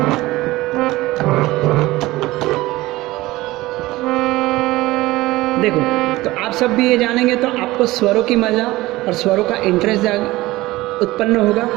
देखो, तो आप सब भी ये जानेंगे तो आपको स्वरों की मजा और स्वरों का इंटरेस्ट उत्पन्न होगा।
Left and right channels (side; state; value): left; quieter; 18.7 dB